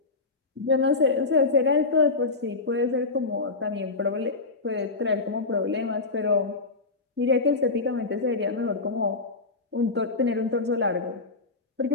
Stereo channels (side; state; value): right; quieter; 3.7 dB